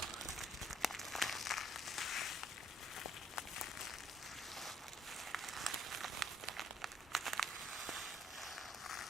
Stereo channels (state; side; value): normal; both; correlation 0.63